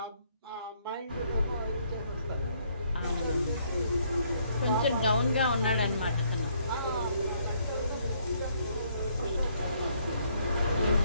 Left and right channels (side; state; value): both; inverted; correlation -0.68